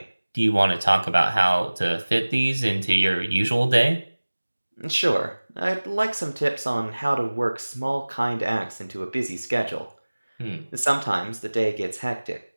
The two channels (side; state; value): both; inverted; correlation -1.00